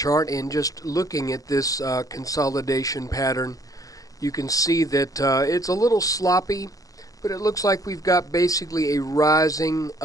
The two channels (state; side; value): late; right; 0.17 ms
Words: and just looking at this consolidation pattern, you can see that it's a little sloppy, but it looks like we've got basically a rising